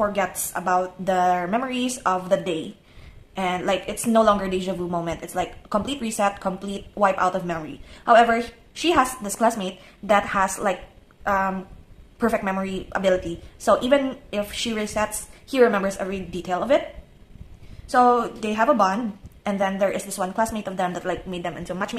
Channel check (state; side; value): identical; both; correlation 1.00